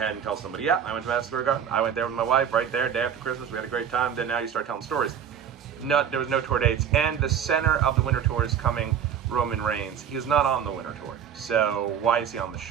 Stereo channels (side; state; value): left; quieter; 8.4 dB